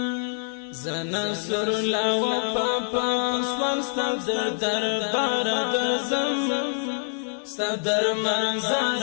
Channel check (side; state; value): right; silent; digital silence